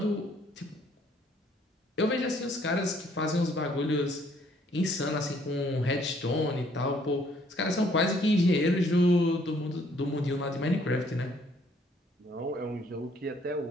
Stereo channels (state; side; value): normal; both; correlation 0.64